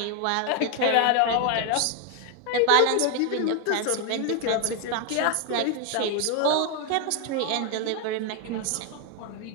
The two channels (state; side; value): different; both; correlation 0.01